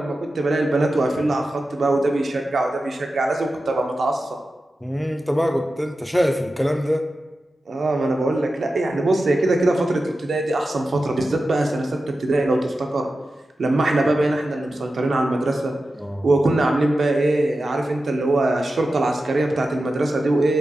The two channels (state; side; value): normal; both; correlation 0.92